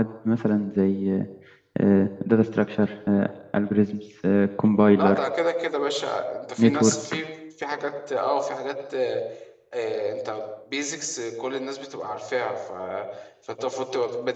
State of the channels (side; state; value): both; identical; correlation 1.00